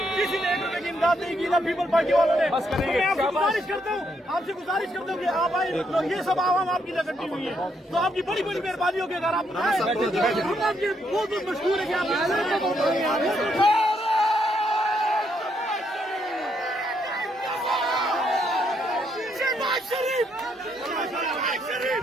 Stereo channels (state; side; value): normal; both; correlation 0.75